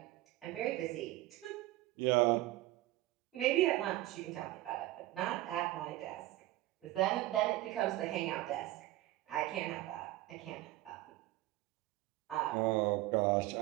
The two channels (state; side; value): quieter; left; 16.9 dB